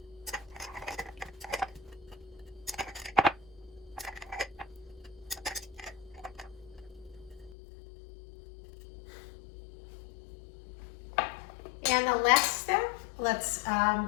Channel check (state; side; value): drops out; right; at 7.6 s